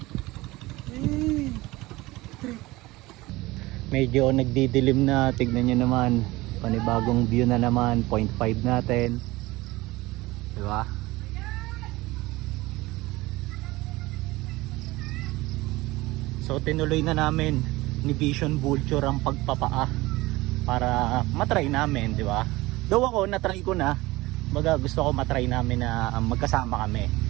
Medyo nagdidilim na. Tignan nyo naman. Panibagong view na naman. 0.5 natin. Diba? So tinuloy na namin ni Vision Vulture ang pagpapaa para matry namin, di ba? Though ako natry ko na, baga gusto ko matry namin na magkasama kami.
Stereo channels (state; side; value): quieter; left; 20.0 dB